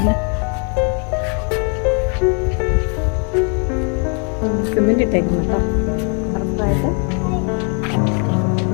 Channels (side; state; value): right; quieter; 39.1 dB